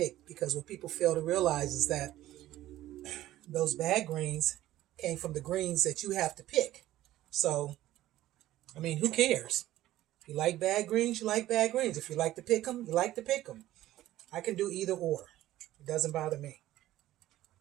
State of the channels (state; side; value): quieter; left; 14.7 dB